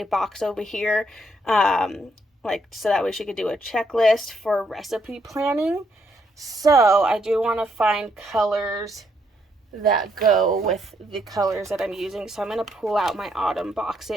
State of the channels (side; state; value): both; normal; correlation 0.74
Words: box over here, like so that way she could do a checklist for recipe planning. So I do want to find colors that go with the colors that I'm using. So I'm going to pull out my autumn